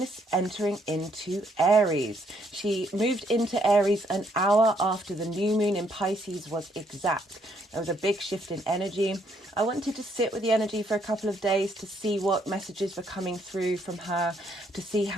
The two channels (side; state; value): both; normal; correlation 0.70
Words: entering into Aries. She moved into Aries an hour after the new moon in Pisces was exact. There was a big shift in energy. I wanted to sit with the energy for a couple of days to see what messages were coming through from her, to see